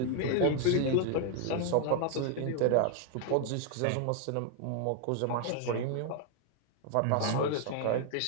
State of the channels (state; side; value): different; both; correlation 0.00